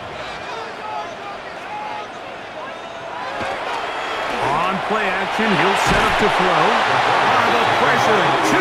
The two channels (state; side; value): identical; both; correlation 1.00